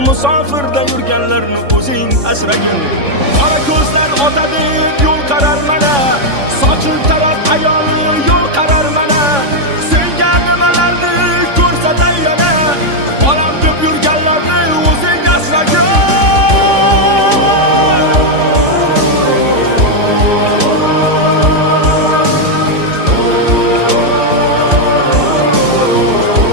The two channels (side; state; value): left; late; 3.5 ms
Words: Musofirda yurganlarni o'zing asragin. Qora ko'zlar ota deb yo'l qarar mana, sochil taraf ayoli yo'l qarar mana. Senga nimalarni ko'rsatay yana, bolam deb yurganlarni o'zing asragin.